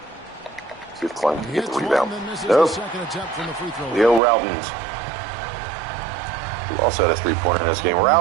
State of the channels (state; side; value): drops out; left; at 4.2 s